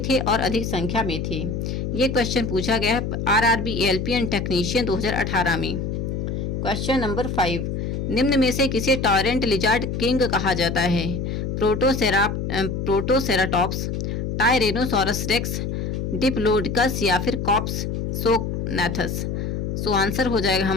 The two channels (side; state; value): left; noise; hum, 3 dB below the sound